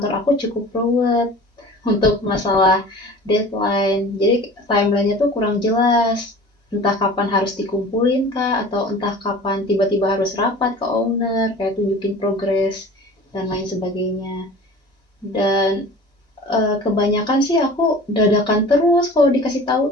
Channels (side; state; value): both; normal; correlation 0.41